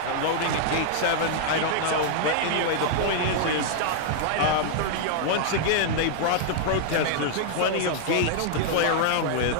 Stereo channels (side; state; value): both; different; correlation -0.01